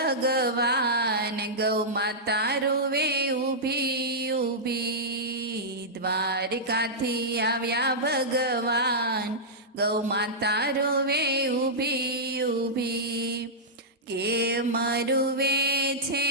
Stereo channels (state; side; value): normal; both; correlation -0.11